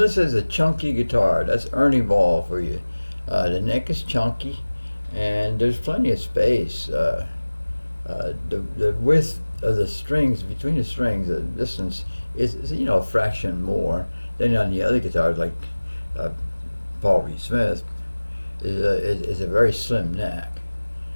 is a chunky guitar. That's Ernie Ball for you. The neck is chunky, and there's plenty of space. The width of the strings, between the strings, the distance is a fraction more than on the other guitars, like Paul Reed Smith, is a very slim neck.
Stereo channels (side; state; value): both; inverted; correlation -1.00